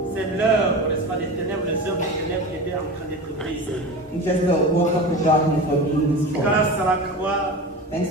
c'est l'heure, n'est-ce pas, des ténèbres, les heures des ténèbres qui étaient en train d'être brisées. It's just the work of the darkness were being destroyed. Grâce à la croix, Thanks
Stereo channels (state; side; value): normal; both; correlation 0.29